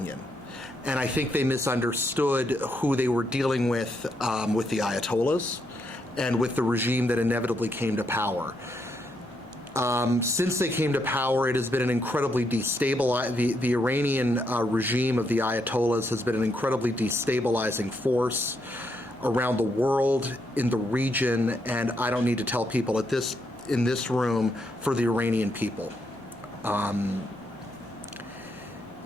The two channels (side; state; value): left; noise; hum, 30 dB below the sound